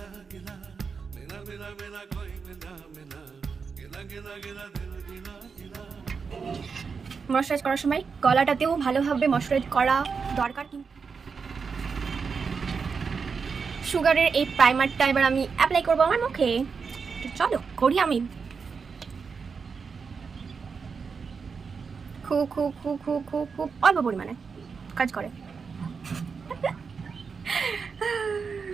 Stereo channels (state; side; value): quieter; left; 5.5 dB